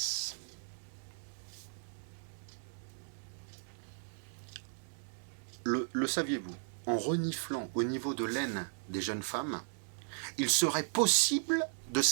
Le saviez-vous? En reniflant au niveau de l'aine des jeunes femmes, il serait possible de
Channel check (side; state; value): left; silent; digital silence